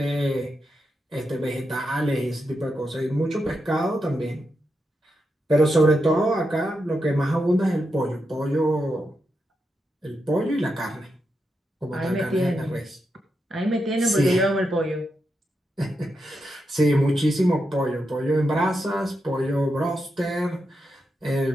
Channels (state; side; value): normal; both; correlation 0.86